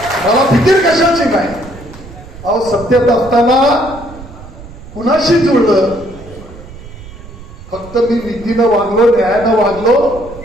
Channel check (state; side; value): noise; right; rumble, 16 dB below the sound